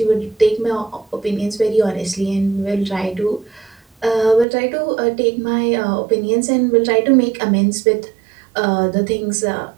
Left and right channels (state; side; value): drops out; left; at 4.5 s